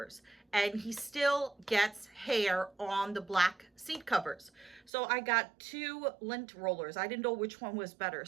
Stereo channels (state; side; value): drops out; left; at 4.9 s